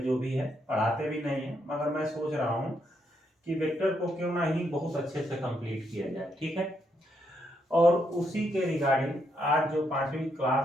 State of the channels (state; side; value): normal; both; correlation 0.77